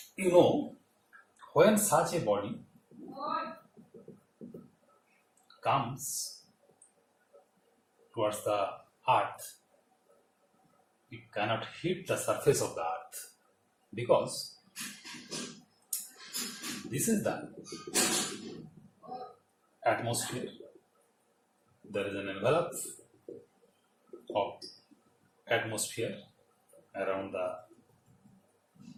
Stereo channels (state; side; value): identical; both; correlation 1.00